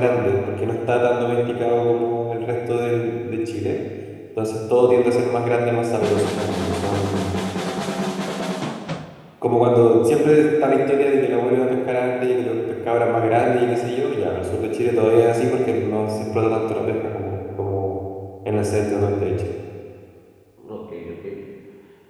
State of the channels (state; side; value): identical; both; correlation 1.00